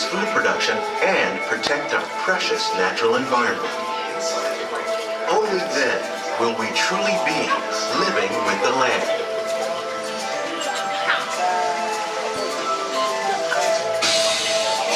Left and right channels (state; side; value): identical; both; correlation 1.00